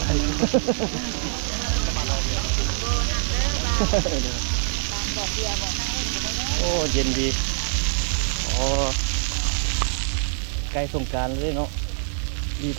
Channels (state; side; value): silent; left; digital silence